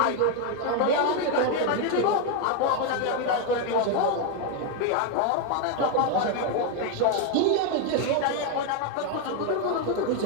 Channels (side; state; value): both; different; correlation 0.01